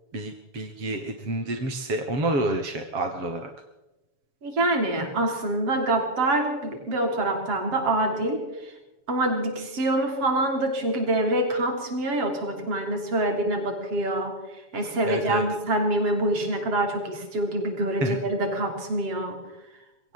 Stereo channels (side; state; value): left; late; 7.1 ms